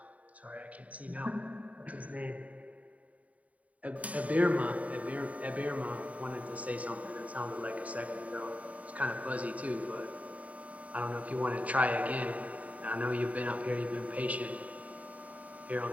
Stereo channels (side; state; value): left; late; 0.069 ms